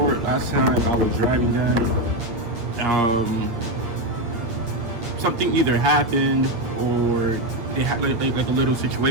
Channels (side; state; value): left; late; 8.5 ms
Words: last time I was driving them, something either happened or they had like a little